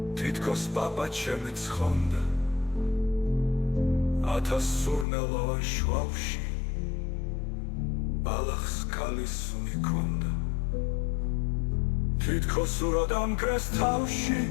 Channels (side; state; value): right; drops out; at 5.1 s